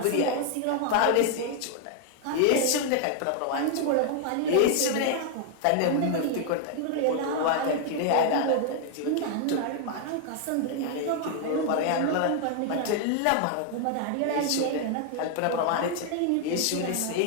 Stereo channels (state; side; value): different; both; correlation 0.00